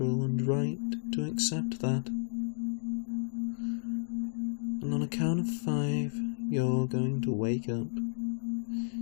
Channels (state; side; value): silent; right; 56 dB below the other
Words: and right to accept that. And on a count of 5, you're going to wake up,